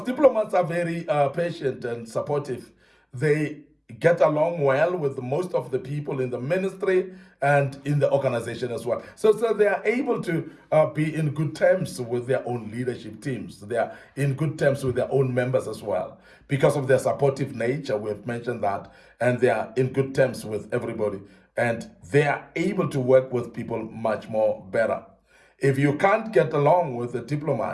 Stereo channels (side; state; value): both; identical; correlation 1.00